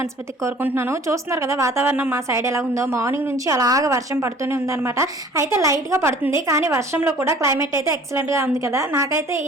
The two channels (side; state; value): both; normal; correlation 0.50